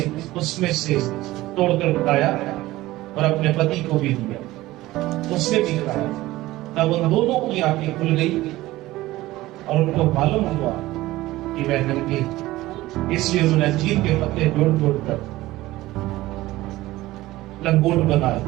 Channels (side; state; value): left; quieter; 17.4 dB